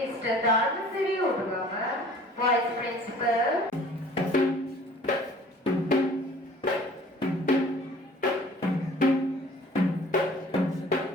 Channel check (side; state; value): both; normal; correlation 0.50